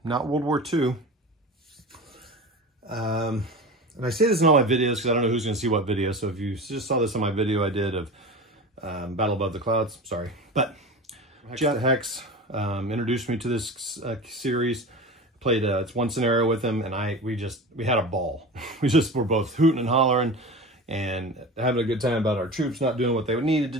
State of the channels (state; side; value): normal; both; correlation 0.31